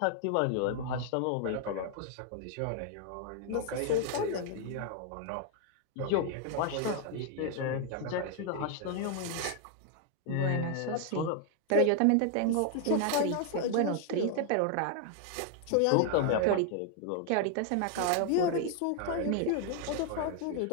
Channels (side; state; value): both; different; correlation 0.00